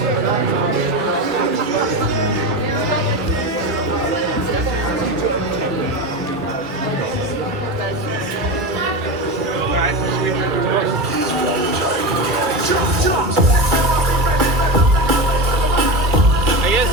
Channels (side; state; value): both; normal; correlation 0.21